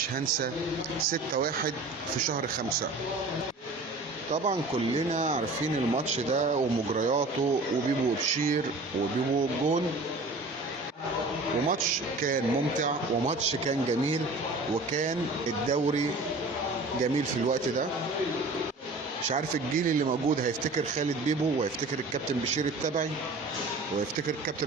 هنسى 6-1 في شهر 5. طبعا كلنا عارفين الماتش ده ومجرياته وبيبو وبشير وبيبو والجون، وماتش كان ممتع وماتش كان جميل، وكان الدوري جميل في الوقت ده. مش عارف الجيل اللي موجود هيفتكر خالد بيبو وهيفتكر الكابتن بشير التبعي وهيفتكر الكابتن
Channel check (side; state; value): left; quieter; 3.0 dB